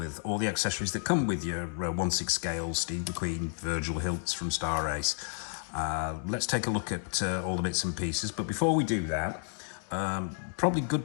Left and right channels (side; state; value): right; silent; 57 dB below the other